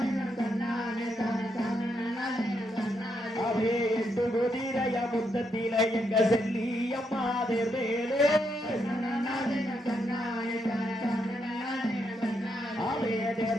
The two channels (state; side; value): normal; both; correlation 0.79